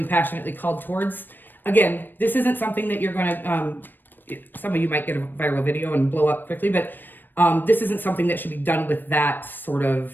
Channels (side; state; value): right; late; 0.093 ms